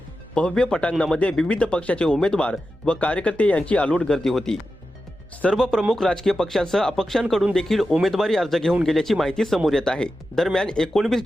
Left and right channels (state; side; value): normal; both; correlation 0.91